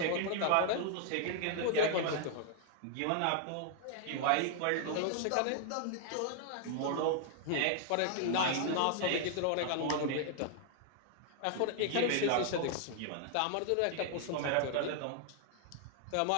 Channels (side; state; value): both; different; correlation 0.00